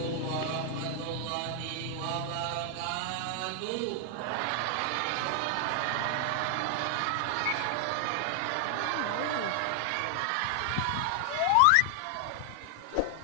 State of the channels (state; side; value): different; both; correlation 0.00